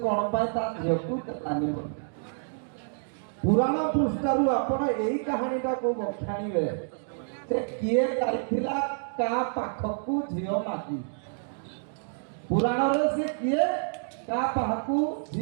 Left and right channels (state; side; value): silent; left; digital silence